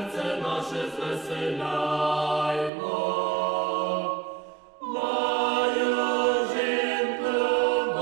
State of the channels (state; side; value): drops out; left; at 2.7 s